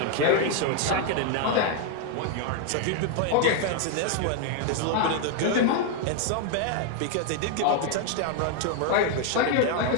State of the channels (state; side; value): different; both; correlation 0.00